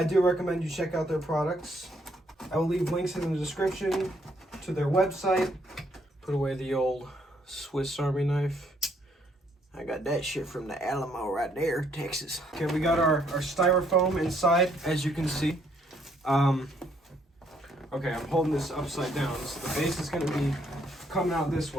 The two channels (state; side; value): normal; both; correlation 0.69